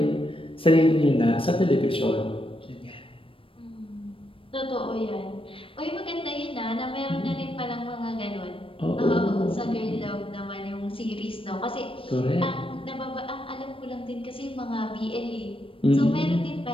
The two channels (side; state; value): right; late; 0.26 ms